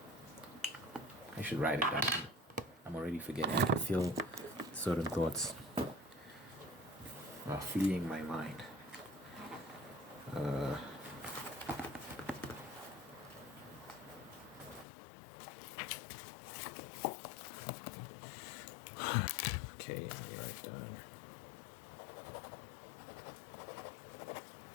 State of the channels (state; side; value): drops out; right; at 14.9 s